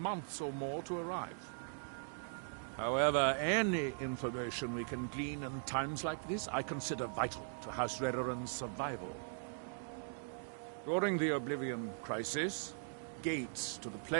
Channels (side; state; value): left; silent; digital silence